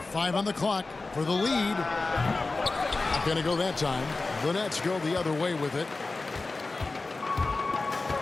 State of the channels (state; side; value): quieter; right; 3.5 dB